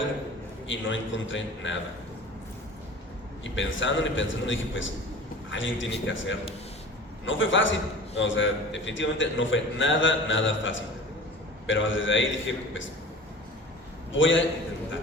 y no encontré nada. Y pensando dije, pues alguien tiene que hacerlo. No fue fácil, o sea, definitivamente no fue nada fácil. Pero desde ahí dije, pues voy a intentar,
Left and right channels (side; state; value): both; normal; correlation 0.40